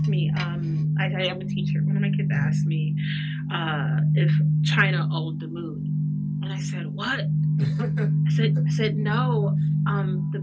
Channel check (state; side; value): identical; both; correlation 1.00